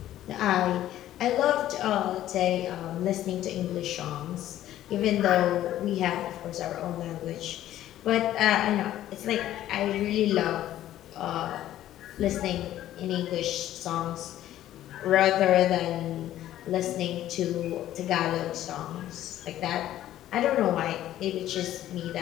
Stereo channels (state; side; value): quieter; right; 13.0 dB